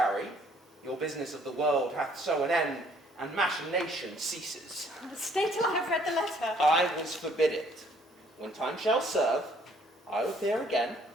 your business of the world hath so an end, and machination ceases. Stay till I have read the letter. I will forbid it. When time shall serve, I will appear again.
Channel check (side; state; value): both; normal; correlation 0.62